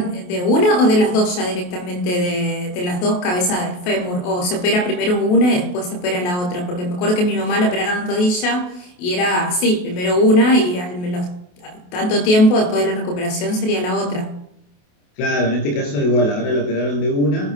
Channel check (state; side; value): late; right; 28 ms